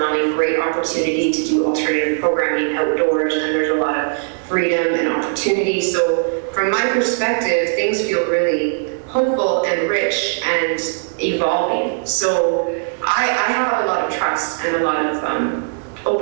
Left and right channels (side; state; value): left; silent; 64 dB below the other